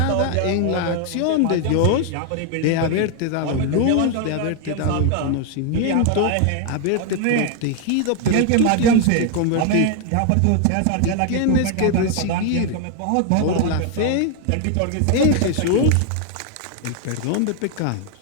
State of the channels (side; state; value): both; different; correlation 0.01